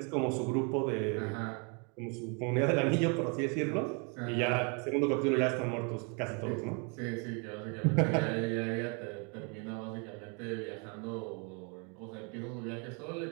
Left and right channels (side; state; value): left; quieter; 35.4 dB